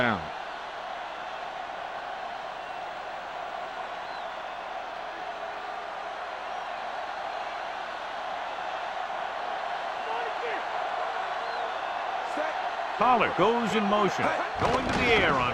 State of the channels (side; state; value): both; identical; correlation 1.00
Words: Pollard goes in motion, going to the air on